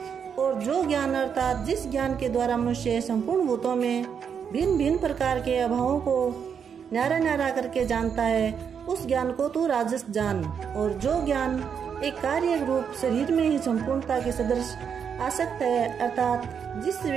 और जो ज्ञान अर्थात जिस ज्ञान के द्वारा मनुष्य संपूर्ण भूतों में भिन्न भिन्न प्रकार के अभावों को न्यारा न्यारा करके जानता है, उस ज्ञान को तू राजस जान। और जो ज्ञान एक कार्य रूप शरीर में ही संपूर्णता के सदृश आसक्त है, अर्थात जिस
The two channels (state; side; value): quieter; left; 7.2 dB